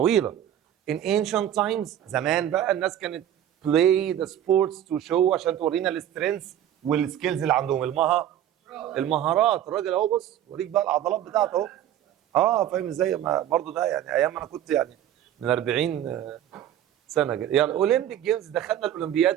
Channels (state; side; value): quieter; left; 11.1 dB